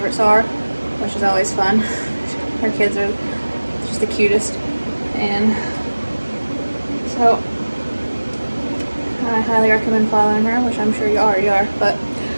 are, which is always fun. Her kids are just the cutest. And so I highly recommend following her, which I'm sure you already are. But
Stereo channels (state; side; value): inverted; both; correlation -1.00